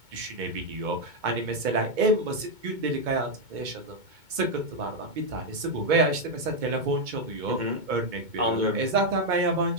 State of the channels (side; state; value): left; late; 2.2 ms